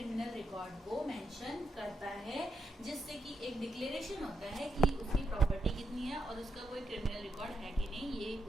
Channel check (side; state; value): both; normal; correlation 0.82